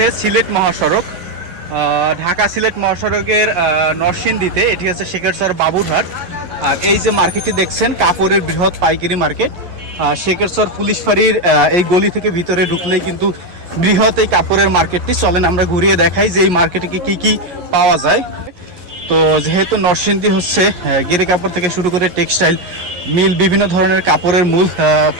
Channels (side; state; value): left; late; 11 ms